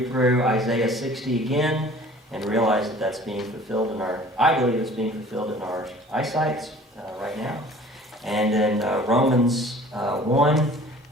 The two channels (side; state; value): both; normal; correlation 0.48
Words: through Isaiah 60 again and realize that that's being fulfilled I believe it's being fulfilled in our eyesight right now. And then Romans 1,